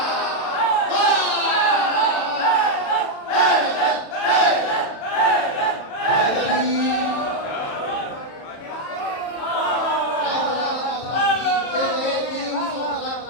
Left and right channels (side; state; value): right; late; 35 ms